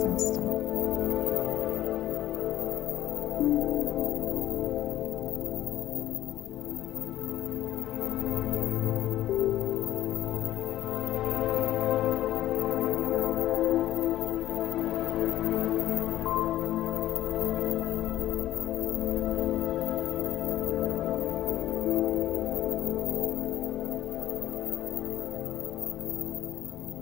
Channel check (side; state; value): right; quieter; 14.0 dB